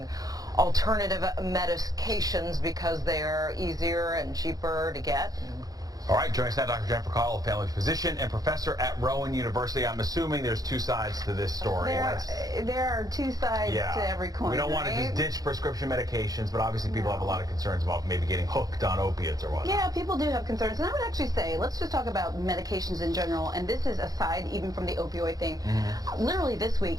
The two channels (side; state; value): left; late; 0.18 ms